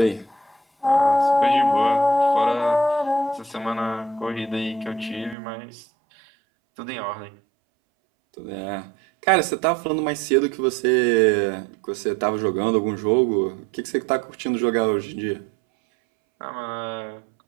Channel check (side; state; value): left; drops out; at 5.4 s